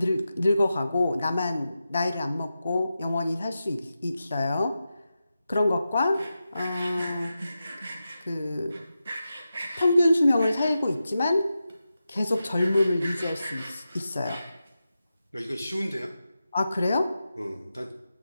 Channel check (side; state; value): both; inverted; correlation -0.91